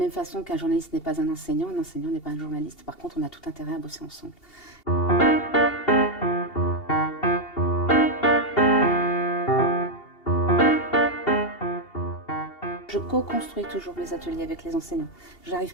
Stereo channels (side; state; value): right; late; 2.7 ms